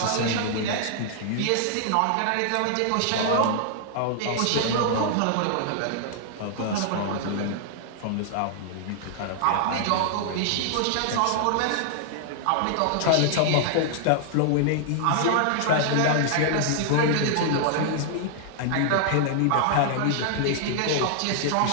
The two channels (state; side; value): different; both; correlation -0.01